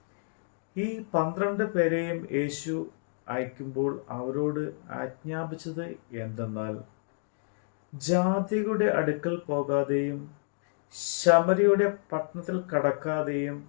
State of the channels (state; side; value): silent; right; digital silence